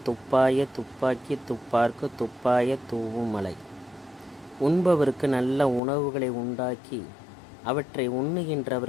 துப்பாய துப்பாக்கி துப்பார்க்கு துப்பாய தூவும் மலை. உண்பவருக்கு நல்ல உணவுகளை உண்டாக்கி அவற்றை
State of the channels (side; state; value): right; drops out; at 5.8 s